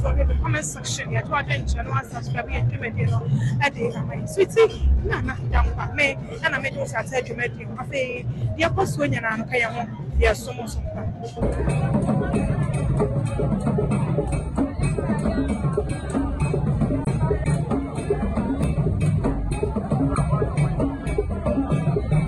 in the comment section. Yeah, to attend channel and subscribe to my video. I did my sweetie. Na down by me and I made those I said you made him. I say the apostle and I'm paying. Yes, so much.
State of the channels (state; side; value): identical; both; correlation 1.00